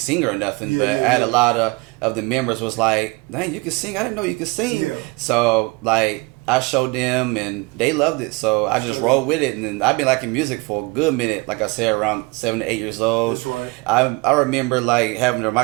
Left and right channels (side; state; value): left; quieter; 25.9 dB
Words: singer or nothing, but I had a lot of the members was like, "Dang, you can sing! I didn't know you could sing." Yeah. So like I showed them, and they loved it. So I just rolled with it, and then I've been liking music for a good minute. Like I said, around 7 to 8 years old. That's right. I remember like having the